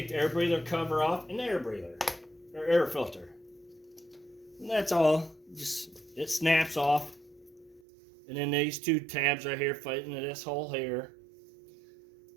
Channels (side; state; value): left; drops out; at 7.8 s